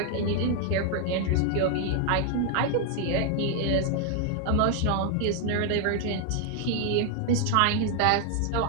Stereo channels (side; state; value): both; different; correlation 0.00